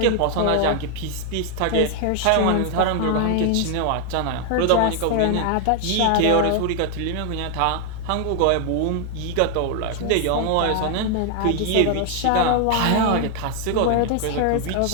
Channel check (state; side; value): different; both; correlation 0.00